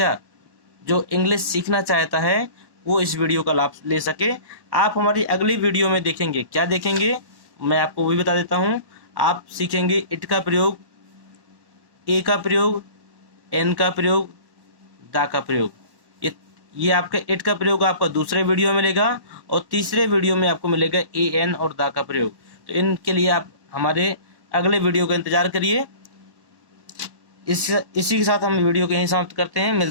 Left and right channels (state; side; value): late; left; 1.1 ms